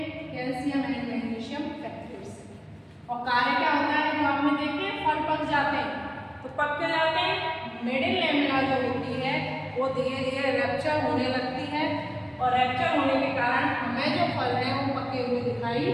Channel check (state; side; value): identical; both; correlation 1.00